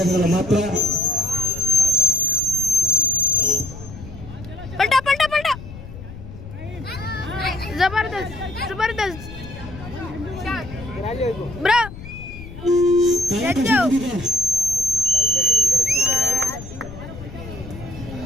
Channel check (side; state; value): left; noise; rumble, 13 dB below the sound